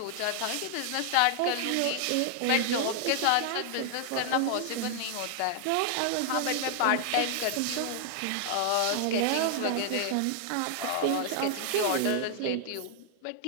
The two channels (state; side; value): different; both; correlation 0.00